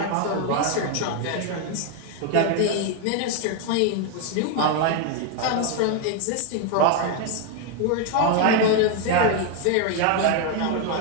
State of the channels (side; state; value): both; different; correlation 0.01